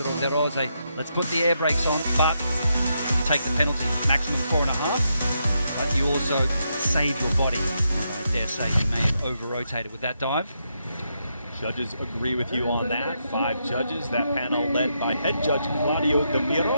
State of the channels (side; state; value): both; inverted; correlation -0.81